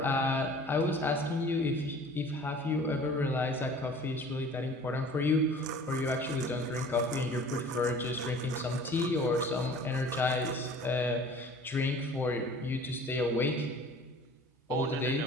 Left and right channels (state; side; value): normal; both; correlation 0.47